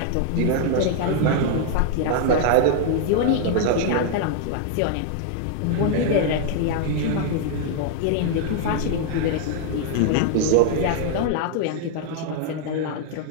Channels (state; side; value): different; both; correlation 0.00